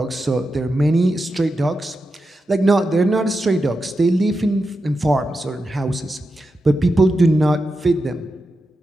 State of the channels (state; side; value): normal; both; correlation 0.89